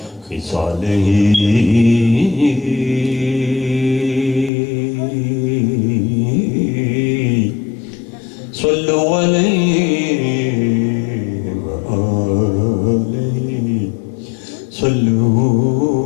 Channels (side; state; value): right; drops out; at 4.5 s